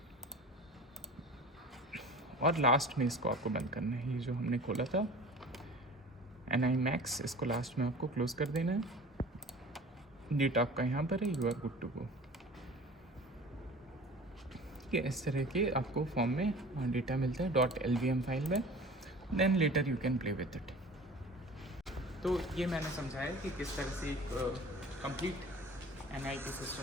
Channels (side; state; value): both; normal; correlation 0.41